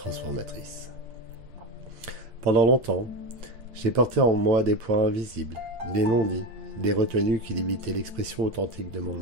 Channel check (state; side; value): late; left; 8.6 ms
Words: Pendant longtemps, j'ai porté en moi des points invisibles, des non-dits, des retenues qui limitaient l'expression authentique de mon